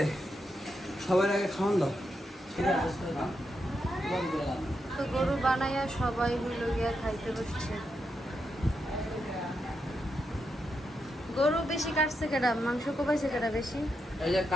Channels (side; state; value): both; normal; correlation 0.84